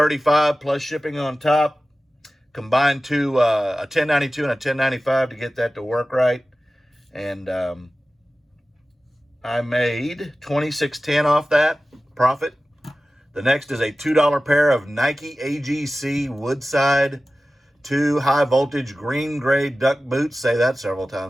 plus shipping on top. Combined to a 1092 and a 1095 to get that to work right. And I made $26.10 off that profit. The next is a $2 pair of Nike AGC Woodside 2 high voltage green gray duck boots. Say that several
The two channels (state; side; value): normal; both; correlation 0.96